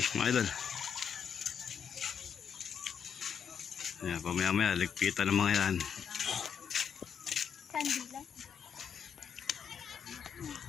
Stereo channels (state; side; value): quieter; right; 7.5 dB